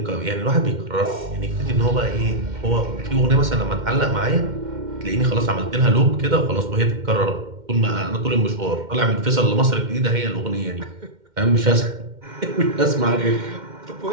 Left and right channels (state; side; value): late; left; 2.1 ms